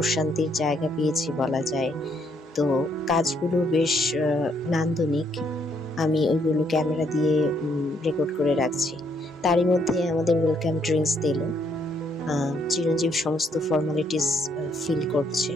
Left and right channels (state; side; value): normal; both; correlation 0.71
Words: জায়গা পেয়েছি বলা যায়। তো কাজগুলো বেশ নান্দনিক। আমি ওইগুলো ক্যামেরা দিয়ে রেকর্ড করে রাখছি। তারই মধ্যে আমাদের ওয়েলকাম ড্রিঙ্কস দিল। চিরঞ্জীব সমস্ত ফর্মালিটিস ফিল করছে,